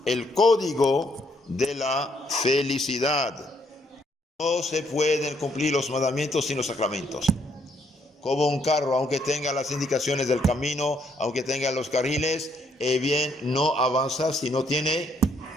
el código de la felicidad. No se pueden cumplir los mandamientos sin los sacramentos. Como un carro, aunque tenga las indicaciones del camino, aunque tenga los carriles, bien, no avanza si no tiene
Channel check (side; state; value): both; normal; correlation 0.70